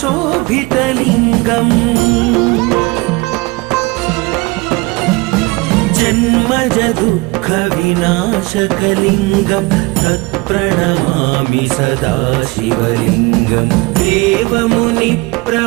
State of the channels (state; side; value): quieter; left; 24.4 dB